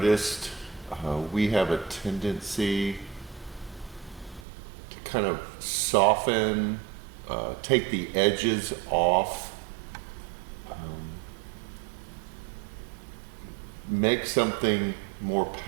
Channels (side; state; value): left; drops out; at 4.4 s